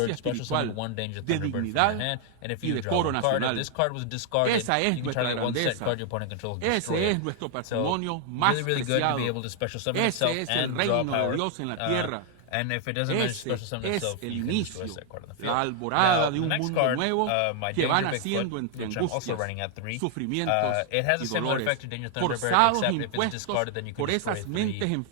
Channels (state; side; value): different; both; correlation 0.00